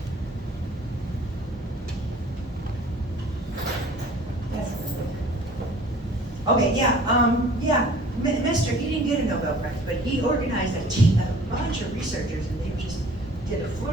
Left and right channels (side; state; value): both; normal; correlation 0.50